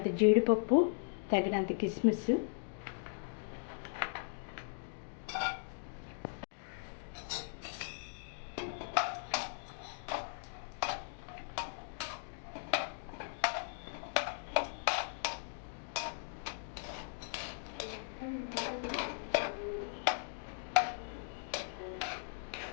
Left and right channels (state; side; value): silent; right; digital silence